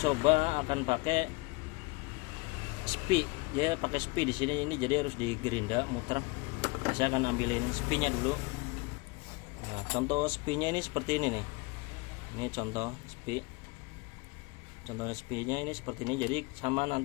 akan pakai spi. Dia pakai spi di sini, ini jadi harus digerinda muter. Saya akan ambilin spinya dulu. Nah, contoh spinya ini seperti ini nih. Ini contoh spi. Contohnya spinya ini seperti ini. Jadi sama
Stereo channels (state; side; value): quieter; right; 26.6 dB